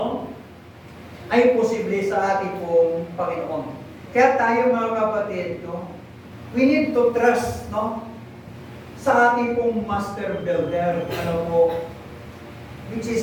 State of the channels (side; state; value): both; identical; correlation 1.00